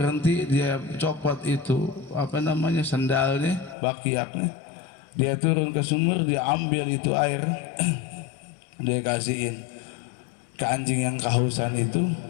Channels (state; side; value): drops out; right; at 3.8 s